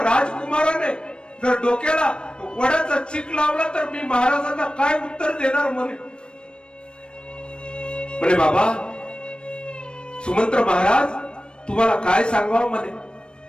राजकुमाराने जर डोक्याला वडाचा चिक लावला तर मी महाराजांना काय उत्तर देणार. म्हणे बाबा सुमंत्र महाराज, तुम्हाला काय सांगावं, म्हणे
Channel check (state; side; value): late; right; 0.055 ms